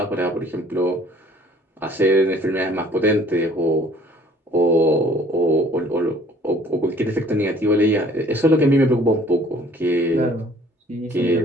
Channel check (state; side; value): normal; both; correlation 0.55